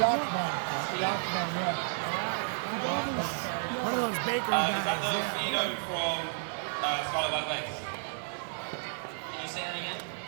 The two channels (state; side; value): silent; left; digital silence